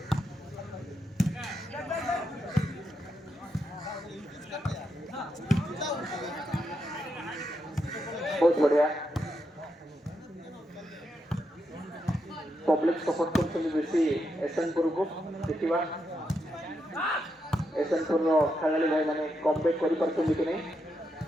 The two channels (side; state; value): both; normal; correlation 0.83